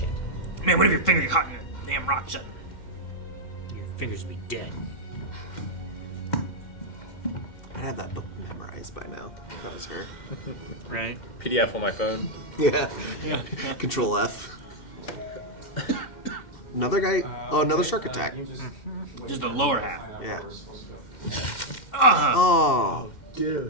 Man, what if your finger got caught in a damn rock shut? Your fingers would be dead. I'd have that book memorized by now. If that was her. Right. PDF on my phone. Yeah. Control F. Another guy. Another shark attack. Just the lower half. Yeah. Oh,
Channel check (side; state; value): right; late; 2.1 ms